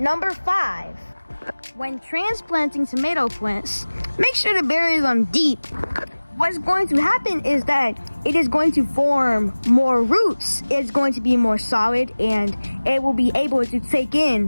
5, when transplanting tomato plants, make sure to bury them deep. What's going to happen is that it is going to form more roots, it's going to be more solid, and it will be able to take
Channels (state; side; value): inverted; both; correlation -1.00